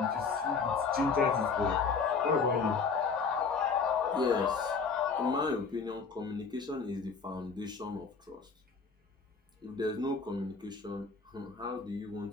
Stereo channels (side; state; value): right; quieter; 5.1 dB